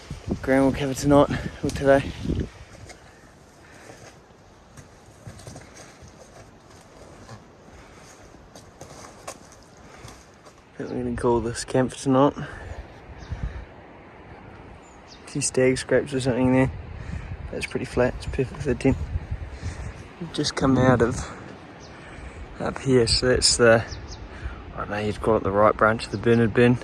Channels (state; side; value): identical; both; correlation 1.00